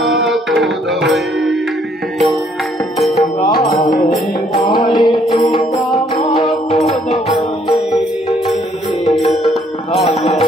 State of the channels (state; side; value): normal; both; correlation 0.66